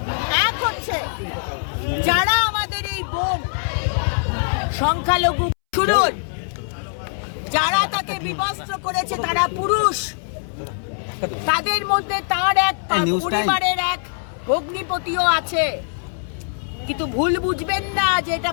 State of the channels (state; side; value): silent; right; 64 dB below the other